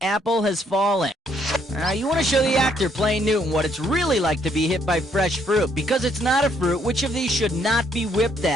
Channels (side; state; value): both; normal; correlation 0.69